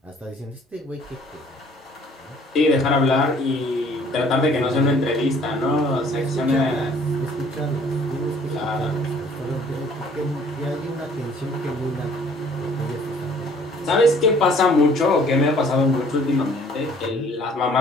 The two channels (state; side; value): normal; both; correlation 0.56